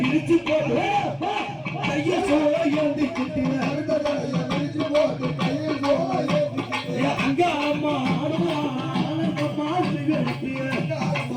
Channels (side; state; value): both; identical; correlation 1.00